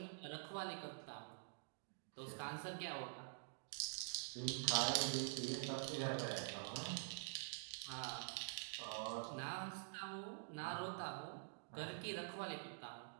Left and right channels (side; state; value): left; silent; digital silence